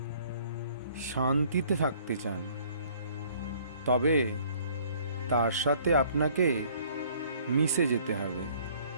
শান্তিতে থাকতে চান তবে তার সাথে আপনাকে মিশে যেতে হবে,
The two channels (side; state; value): both; inverted; correlation -0.57